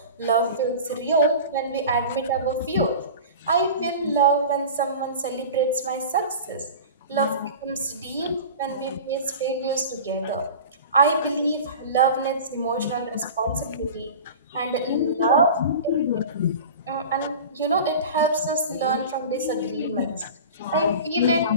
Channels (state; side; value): inverted; both; correlation -0.35